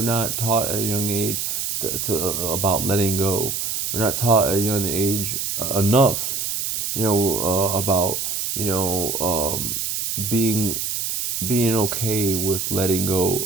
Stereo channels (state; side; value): noise; right; hiss, 2 dB below the sound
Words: not taught at a young age about letting go. We're not taught at a young age enough, about being okay with letting